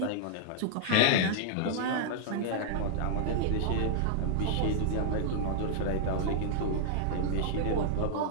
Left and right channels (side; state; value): both; different; correlation -0.01